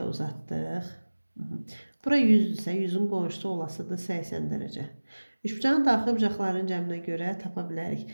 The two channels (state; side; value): inverted; both; correlation -1.00